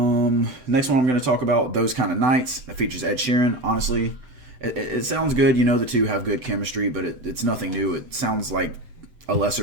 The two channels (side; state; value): left; late; 7.9 ms